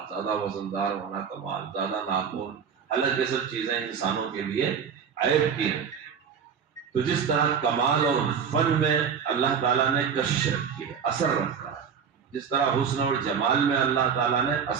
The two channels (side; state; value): left; quieter; 7.0 dB